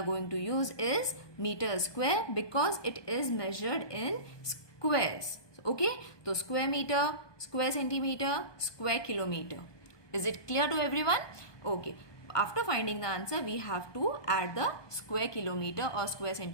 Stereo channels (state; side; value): late; right; 1.2 ms